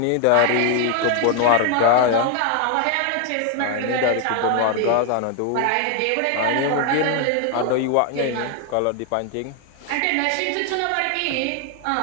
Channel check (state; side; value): different; both; correlation 0.00